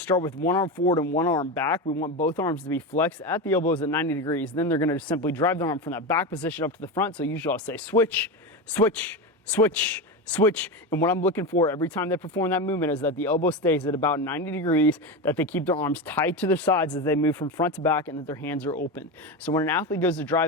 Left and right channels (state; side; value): normal; both; correlation 0.19